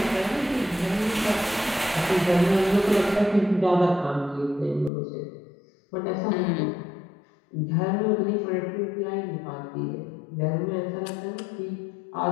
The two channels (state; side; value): drops out; right; at 4.9 s